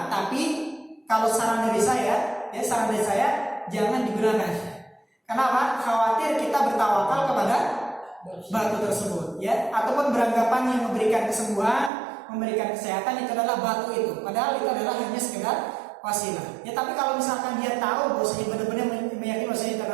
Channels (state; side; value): drops out; left; at 11.9 s